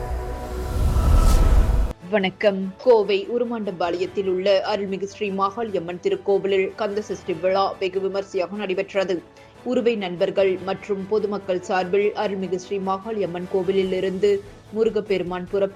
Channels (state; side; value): identical; both; correlation 1.00